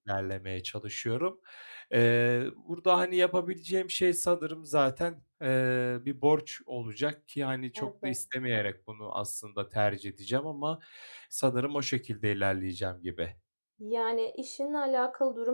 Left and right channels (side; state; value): both; inverted; correlation -1.00